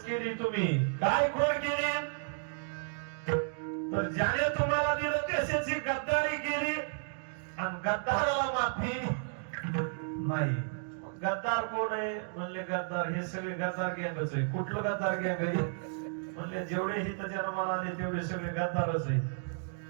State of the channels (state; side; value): silent; left; digital silence